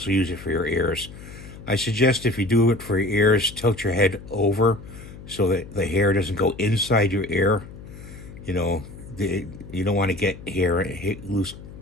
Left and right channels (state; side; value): noise; left; hum, 15 dB below the sound